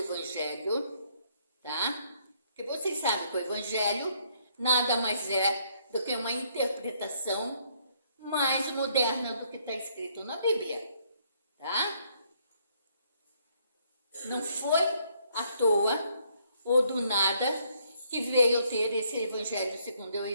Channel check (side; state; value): both; inverted; correlation -0.68